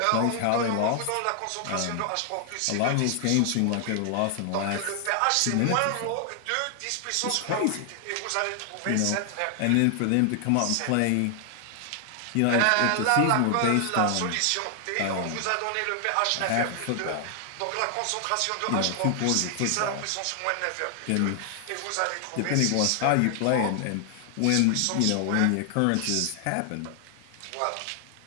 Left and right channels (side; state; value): both; different; correlation 0.00